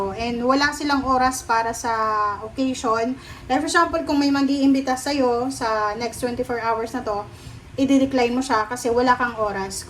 And wala silang oras para sa occasion. Like for example, kung may mag-iimbita sa'yo sa next 24 hours na to, i-decline mo siya kasi wala kang oras.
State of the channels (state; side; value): identical; both; correlation 1.00